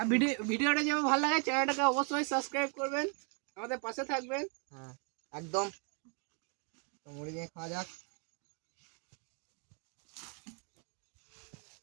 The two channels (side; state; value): left; quieter; 37.2 dB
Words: ভিডিওটা যেমন ভালো লাগে চ্যানেলটাকে অবশ্যই সাবস্ক্রাইব করবেন, আমাদের পাশে থাকবেন। হ্যাঁ একদম। তো মুড়ি দিয়ে খাওয়া যাক।